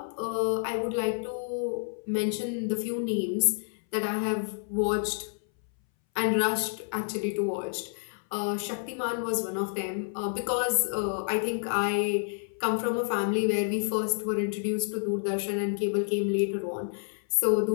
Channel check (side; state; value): right; silent; 59 dB below the other